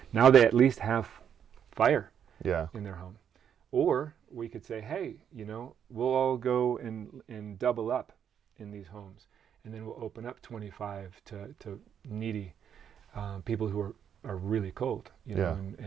now they at least have fire in their home. Or we could say, hey, we'll all go and double up in these homes, and then we'll open up 25 to needy people who are really cold,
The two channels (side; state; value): left; quieter; 8.6 dB